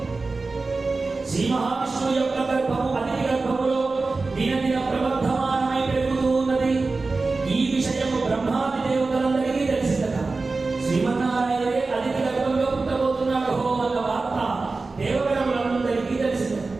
శ్రీ మహావిష్ణువు యొక్క గర్భము అతిథి గర్భములో దినదిన ప్రవర్ధమానమై పెరుగుతూ ఉన్నది. ఈ విషయము బ్రహ్మాది దేవతలందరికీ తెలిసిందట. శ్రీమన్నారాయణే అతిథి గర్భంలో పుట్టబోతున్నాడు అన్న వార్త దేవగణములందరికీ తెలిసింది.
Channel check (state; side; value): quieter; left; 3.8 dB